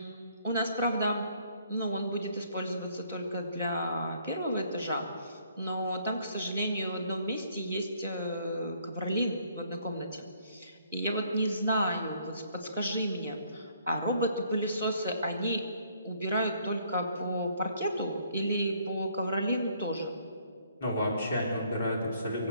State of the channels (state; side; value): inverted; both; correlation -0.64